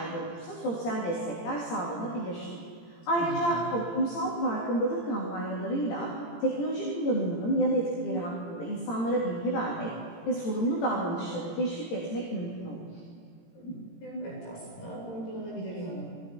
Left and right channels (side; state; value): right; late; 18 ms